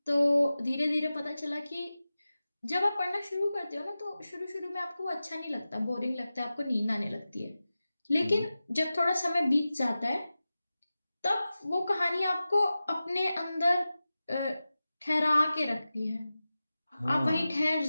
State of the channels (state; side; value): inverted; both; correlation -0.95